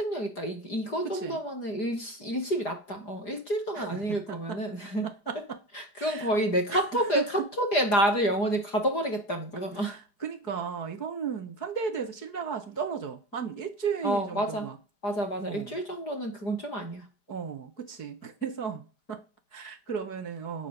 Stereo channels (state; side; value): late; right; 4.9 ms